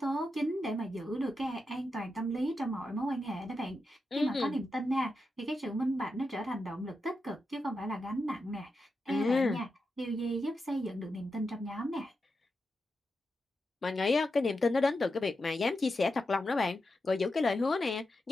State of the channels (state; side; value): normal; both; correlation 0.88